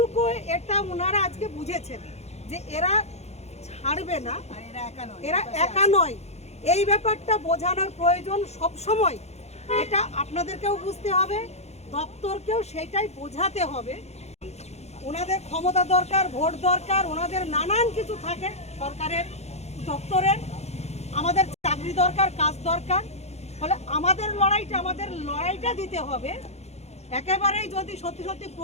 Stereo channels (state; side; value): late; right; 0.31 ms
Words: এটা ওনারা আজকে বুঝেছেন যে এরা ছাড়বে না, এরা একা নয়। এই ব্যাপারটা বোঝানোর প্রয়োজন সব সময়, এটা আপনাদেরকেও বুঝতে হবে, দপ্তরকেও সেটাই বোঝাতে হবে। ওনাদের ক্ষমতা দরকার, ভোট দরকার, ওনাদের নানান কিছু থাকে সরকারের দপ্তরের, আমাদের চাকরি দরকার, কাজ দরকার। ফলে আমাদের লড়াইটা দিতে হবে। একেবারেই যদি সত্যি সত্যি